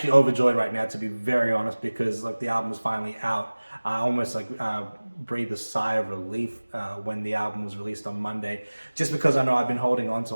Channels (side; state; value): both; inverted; correlation -1.00